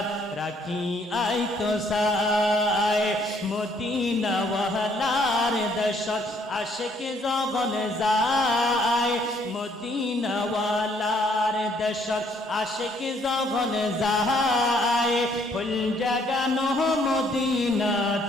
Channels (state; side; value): normal; both; correlation 0.66